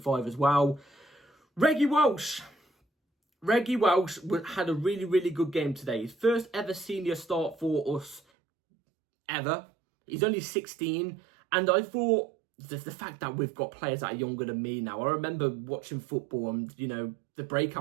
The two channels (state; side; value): drops out; left; at 8.2 s